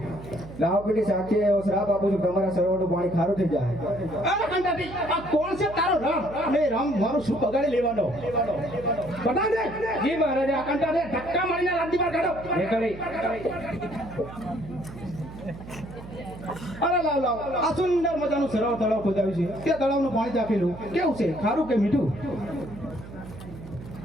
સાક્ષી એવો શ્રાપ આપું છું, તમારા સરોવરનું પાણી ખારું થઈ જાય. અરે કંટાળી, આ કોણ છે તારો રામ? ને રામ મારું શું બગાડી લેવાનો? બતા દે. જી મહારાજા. આ કંટાળી ધક્કા મારીને રાજ્ય બહાર કાઢો. અરે લાવ લાવ, આ સુંદર મજાનું સરોવર તળાવ ખોદાવ્યું છે. તે તળાવનું પાણી ચાખેલું કેવું છે? ખારું કે મીઠું?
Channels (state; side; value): noise; right; hum, 14 dB below the sound